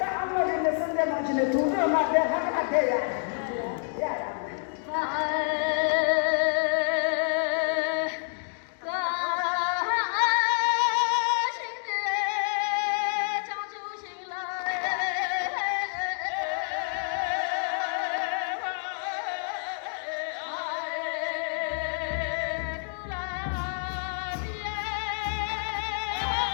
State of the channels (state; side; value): silent; right; 59 dB below the other